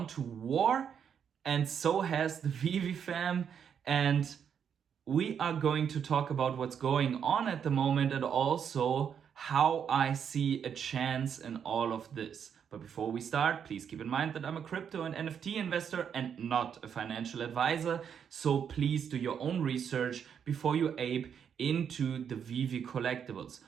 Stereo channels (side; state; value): left; quieter; 7.8 dB